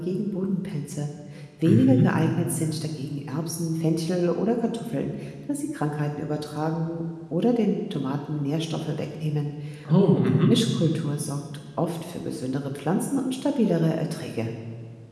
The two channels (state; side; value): identical; both; correlation 1.00